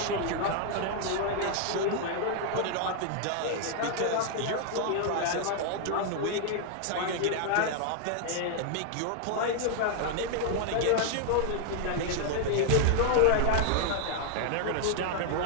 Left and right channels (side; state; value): both; different; correlation 0.00